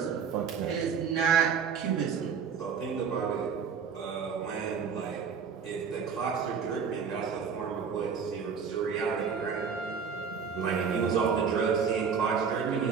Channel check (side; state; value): left; quieter; 6.4 dB